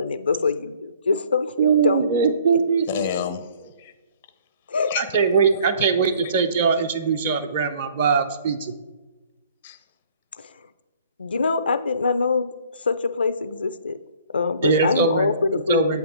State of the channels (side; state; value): both; inverted; correlation -0.55